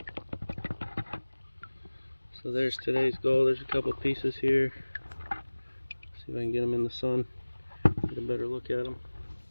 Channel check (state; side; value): inverted; both; correlation -1.00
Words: So there's today's gold. There's a couple pieces here. See if I can get them in the sun. Get a better look at them.